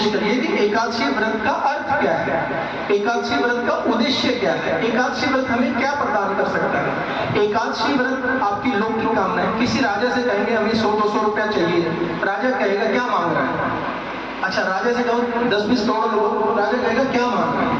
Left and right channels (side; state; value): both; identical; correlation 1.00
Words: करिए कि एकादशी व्रत का अर्थ क्या है, एकादशी व्रत का उद्देश्य क्या है, एकादशी व्रत हमें क्या प्रदान कर सकता है। एकादशी व्रत आपकी लौकिक कामना है। किसी राजा से कहेंगे हमें 100-200 रुपया चाहिए, राजा कहेगा क्या मांग रहा है। अच्छा, राजा से कहो 10-20 करोड़ लोग, राजा कहेगा क्या मांग रहा